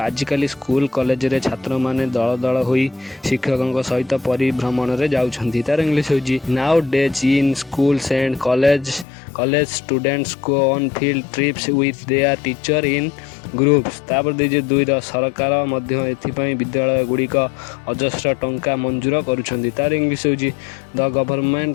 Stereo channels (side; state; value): right; drops out; at 9.1 s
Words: स्कूल कॉलेज रे छात्र मैंने दल दल हो शिक्षकों सहित परिभ्रमण में जाऊँगी। तार इंग्लीश हूँ now days in schools and college students go on field trips with their teacher in groups. तापर दीजिए 2 सरकार विद्यालय गुड़िक अजस्र टंका मंजूर करुछंदी। तार इंग्लीश हूँ the